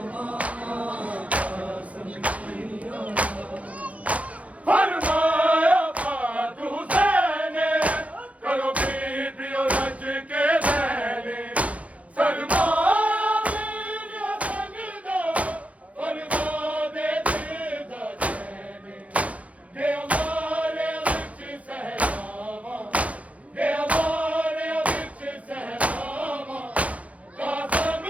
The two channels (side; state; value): left; late; 0.066 ms